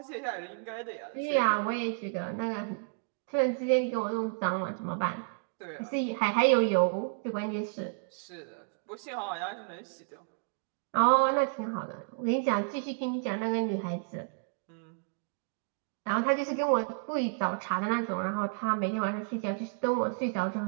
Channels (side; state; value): left; quieter; 37.9 dB